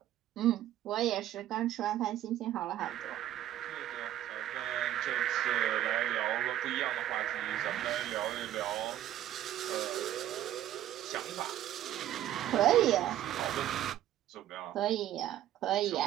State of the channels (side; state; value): left; quieter; 12.7 dB